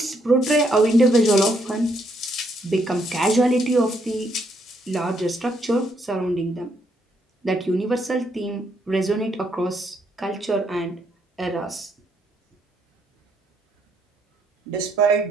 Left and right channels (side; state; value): both; normal; correlation 0.73